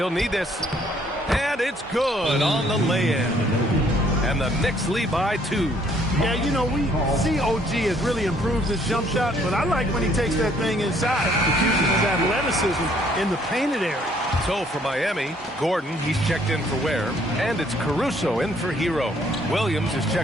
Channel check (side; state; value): both; normal; correlation 0.64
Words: need this. And it's good on the lay-in. And the Knicks lead by 2. Yeah, you know, we see OG has really improved his jump shot, but I like when he takes that thing inside. He uses his athleticism in the painted area. So for Miami, Gordon, he's checked in for Ware. And it's Caruso in for Hero. Williams is